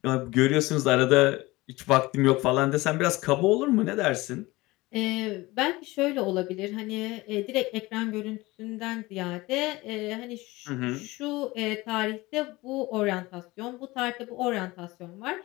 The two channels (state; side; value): quieter; right; 20.8 dB